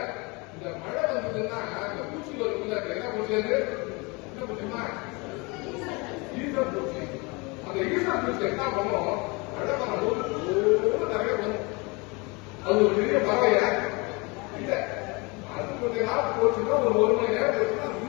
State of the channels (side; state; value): right; quieter; 27.6 dB